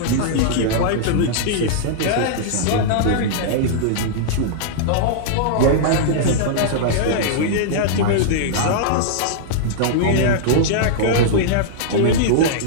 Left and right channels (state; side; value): different; both; correlation -0.02